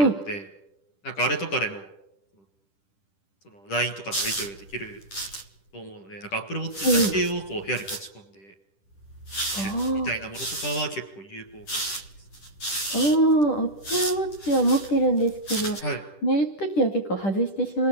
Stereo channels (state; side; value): late; right; 10 ms